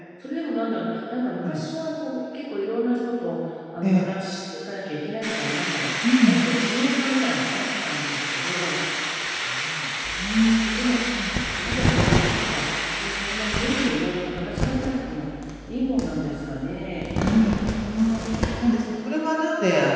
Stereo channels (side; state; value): both; identical; correlation 1.00